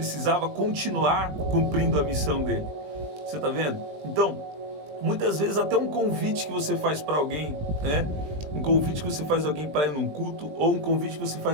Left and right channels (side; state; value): left; late; 20 ms